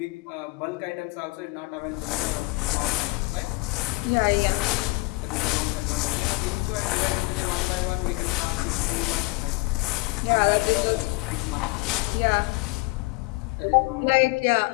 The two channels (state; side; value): quieter; right; 24.3 dB